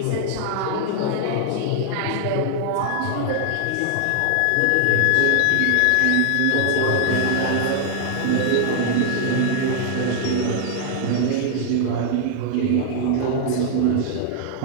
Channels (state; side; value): different; both; correlation 0.00